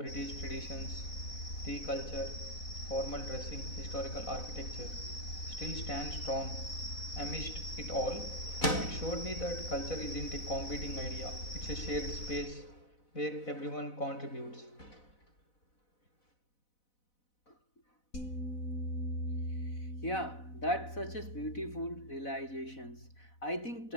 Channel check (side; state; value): right; late; 4.0 ms